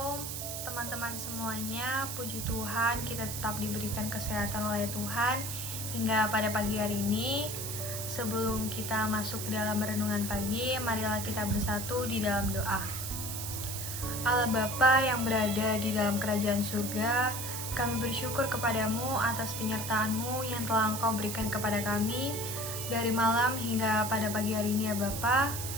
teman-teman semuanya, puji Tuhan kita tetap diberikan kesehatan oleh Tuhan hingga pada pagi hari ini. Sebelum kita masuk ke dalam renungan pagi, marilah kita bersatu di dalam doa. Allah Bapa yang berada di dalam kerajaan surga, kami bersyukur kepadamu atas penyertaan-Mu yang telah Engkau berikan kepada kami dari malam hingga pada pagi hari ini ya Bapa.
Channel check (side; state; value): right; noise; hiss, 5 dB below the sound